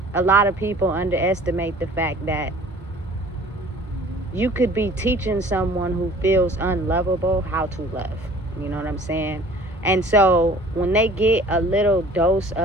a lot of people underestimate the fact that you could be teaching someone who feels unlovable how to love. You know what I'm saying? And so when they get a little dose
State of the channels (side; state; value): both; normal; correlation 0.49